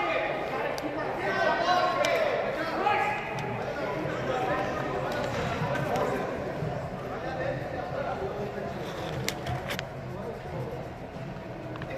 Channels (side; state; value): both; identical; correlation 1.00